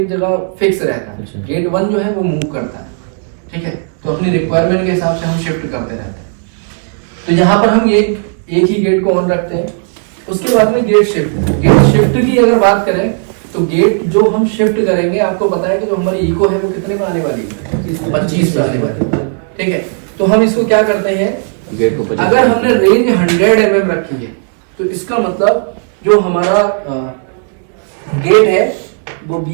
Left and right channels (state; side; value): silent; left; 55 dB below the other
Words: जगह फिक्स रहता है। अच्छा। गेट 1 जो है वो मूव करता है। ठीक है, तो अपनी रिक्वायरमेंट के हिसाब से हम शिफ्ट करते रहते हैं। तो यहाँ पर हम एक ही गेट को ऑन रखते हैं। उसके बाद में गेट शिफ्ट की अगर बात करें तो गेट जो हम शिफ्ट करेंगे, आपको पता है कि जो हमारी इको है वो कितने पे आने वाली है? 25 पे आने वाली है। ठीक है, तो हम इसको क्या करते हैं? गेट को अगर हमने रेंज 100 mm रखी है तो इसका मतलब जो हमारा गेट है वो